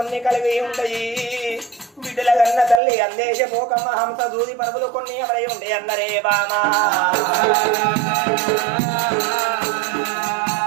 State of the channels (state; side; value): drops out; left; at 2.8 s